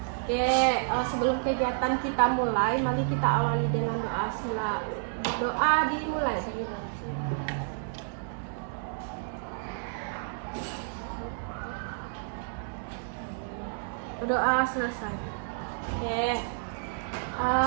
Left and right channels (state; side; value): silent; left; 58 dB below the other